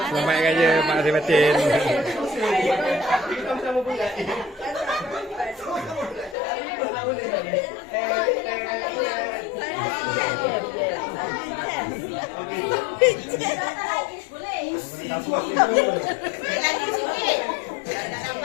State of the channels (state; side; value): drops out; right; at 6.4 s